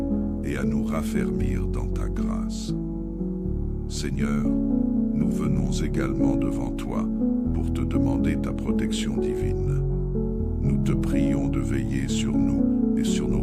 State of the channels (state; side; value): identical; both; correlation 1.00